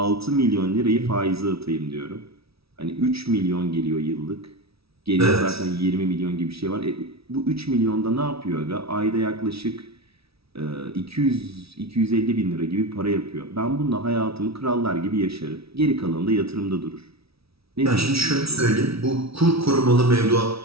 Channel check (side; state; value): left; late; 0.76 ms